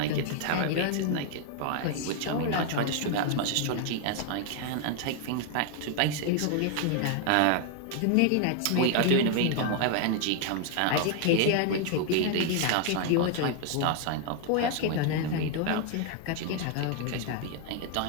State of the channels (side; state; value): both; different; correlation 0.00